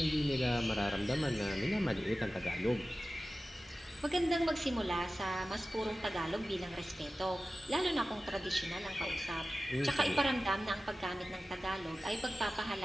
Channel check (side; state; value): both; normal; correlation 0.95